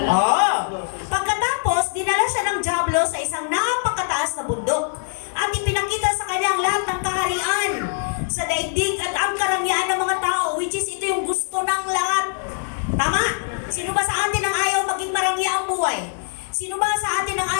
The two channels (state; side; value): silent; right; digital silence